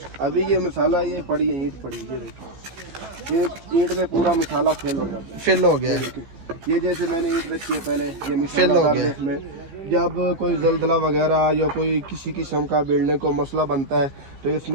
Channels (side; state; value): left; late; 15 ms